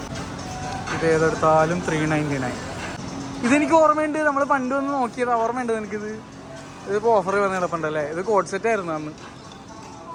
ഇത് ഏതെടുത്താലും 399. ഇതെനിക്ക് ഓർമ്മയുണ്ട്. നമ്മൾ പണ്ട് വന്ന് നോക്കിയത് ഓർമ്മയുണ്ട് എനിക്കിത്. ഇതിപ്പോൾ ഓഫർ വന്ന് കിടപ്പുണ്ടല്ലേ. ഇത് കോഡ് സെറ്റ് ആയിരുന്നു അന്ന്.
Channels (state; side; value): identical; both; correlation 1.00